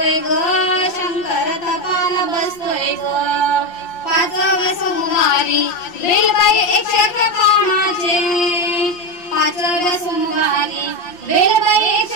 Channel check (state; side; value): late; right; 5.7 ms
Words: ग, शंकर तपाल बसतोय ग. पाचव्या सोमवारी बेलबाई 111 पानाचे, पाचव्या सोमवारी बेलबाई